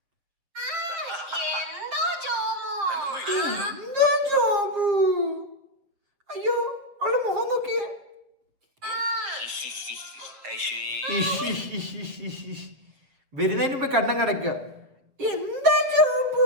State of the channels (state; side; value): late; left; 7.6 ms